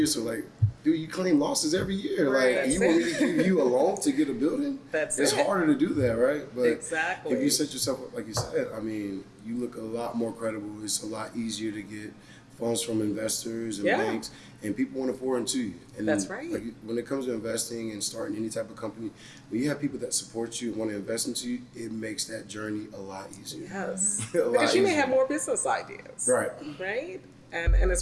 So like, dude, you claim losses every year. Right, Like, that's you want me it. to give you a loan to get a building? That's it's it. harder to do that, right? But Exactly. if you set yourself up like you said, I mean, you look a lot more credible. It's a lot easier to get funds from investors and Yeah. banks, and people want to pour into you. And That's right. Like, when it comes to investing and starting any type of company, when you have people that support you and want to invest into you, it makes that journey a lot easier. Yes. A lot Because you may easier. have more business ideas. Right. Right? And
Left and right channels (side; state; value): both; identical; correlation 1.00